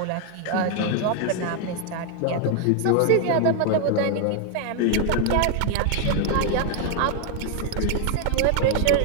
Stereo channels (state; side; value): different; both; correlation 0.00